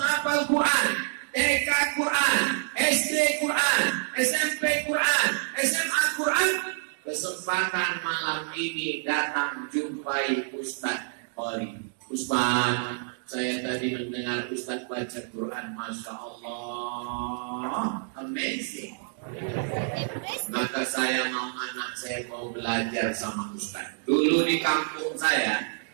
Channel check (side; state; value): left; silent; digital silence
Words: Quran, TK Quran, SD Quran, SMP Quran, SMA Quran, kesempatan malam ini datang jumpai Ustaz Qori. Ustaz, saya tadi mendengar Ustaz baca Quran, Masya Allah, amazing. Maka saya mau anak saya mau belajar sama Ustaz. Dulu di kampung saya